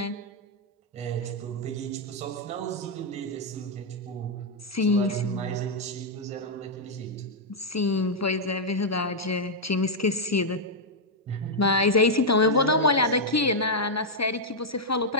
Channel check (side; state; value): both; normal; correlation -0.04